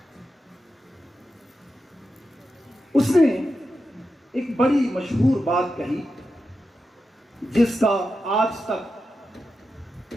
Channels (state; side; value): normal; both; correlation 0.89